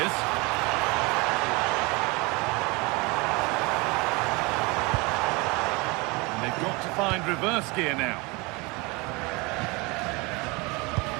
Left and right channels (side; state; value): left; quieter; 26.3 dB